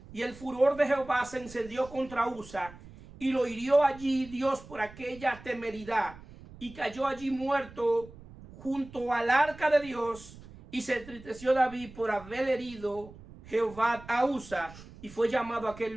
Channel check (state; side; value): noise; right; rumble, 18 dB below the sound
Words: y el furor de Jehová se encendió contra Usa, y lo hirió allí Dios por aquella temeridad, y cayó allí muerto junto al arca de Dios. Y se entristeció David por haber herido Jehová a Usa, y fue llamado a aquel